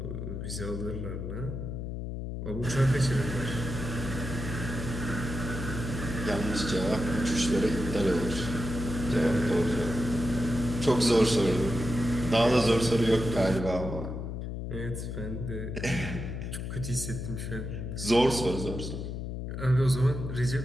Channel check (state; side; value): noise; left; hum, 5 dB below the sound